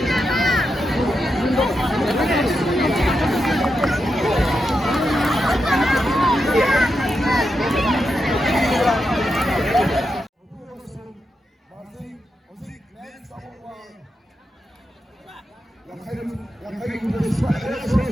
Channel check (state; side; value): normal; both; correlation 0.86